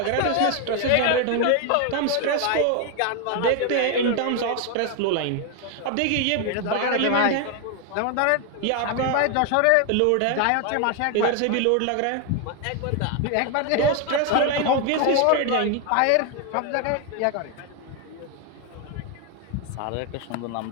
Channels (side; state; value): both; different; correlation 0.01